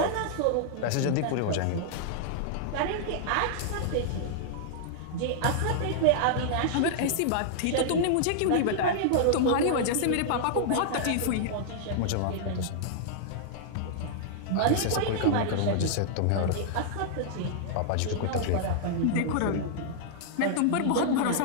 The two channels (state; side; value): different; both; correlation -0.01